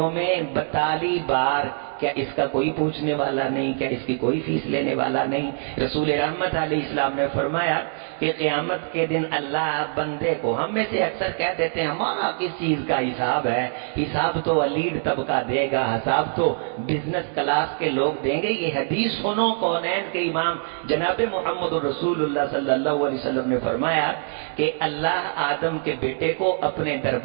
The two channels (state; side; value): silent; left; digital silence